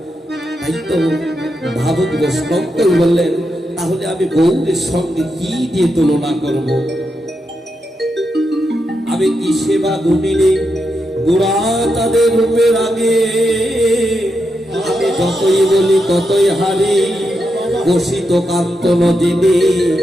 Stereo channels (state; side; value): normal; both; correlation 0.85